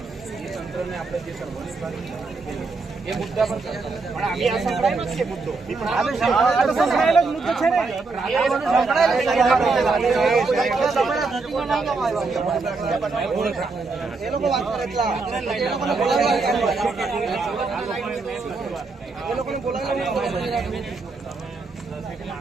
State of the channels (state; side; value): quieter; left; 4.0 dB